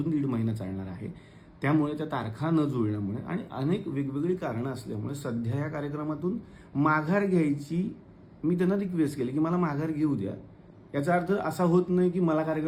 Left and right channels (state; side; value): identical; both; correlation 1.00